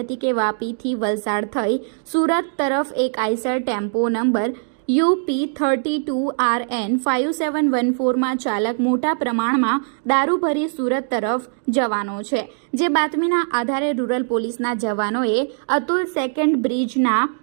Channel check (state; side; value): silent; left; digital silence